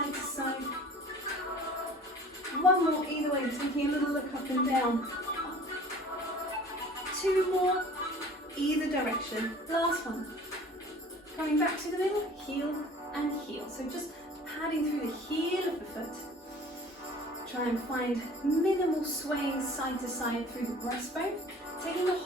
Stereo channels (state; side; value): normal; both; correlation 0.46